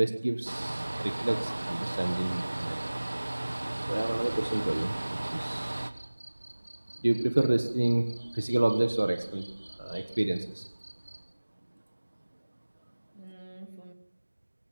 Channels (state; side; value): inverted; both; correlation -1.00